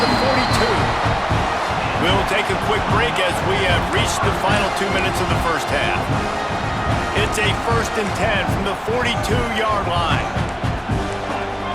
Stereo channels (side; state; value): both; identical; correlation 1.00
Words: the 42. We'll take a quick break as we have reached the final 2 minutes of the first half. It's a 1st and 10 from the 42-yard line.